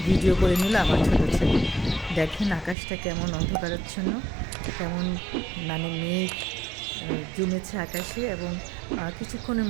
ভিডিও করে নিল আমার ছোটো ছেলে। দেখেন আকাশটা কেমন অন্ধকারাচ্ছন্ন, কেমন মানে মেঘ জমেছে আকাশে, এবং কিছুক্ষণের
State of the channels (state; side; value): drops out; left; at 2.8 s